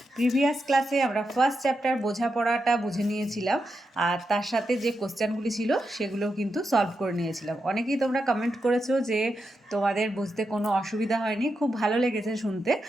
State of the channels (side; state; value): both; normal; correlation 0.86